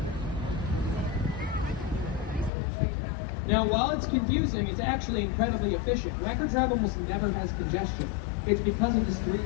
Now, while it's confusing, it's actually incredibly efficient. Wacker Drive almost never has congestion. It's because of this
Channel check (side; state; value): right; drops out; at 2.5 s